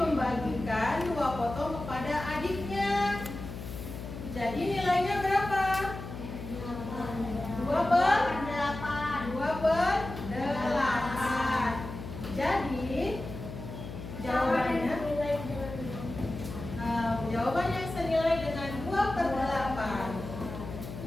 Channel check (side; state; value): left; noise; hum, 9 dB below the sound